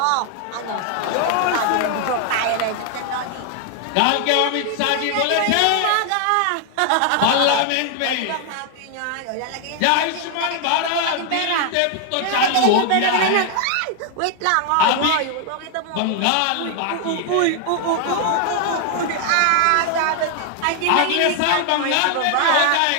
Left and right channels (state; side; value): different; both; correlation 0.00